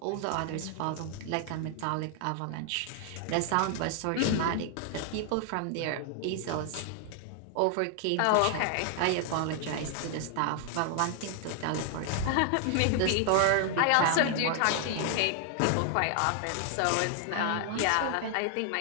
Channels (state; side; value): different; both; correlation 0.00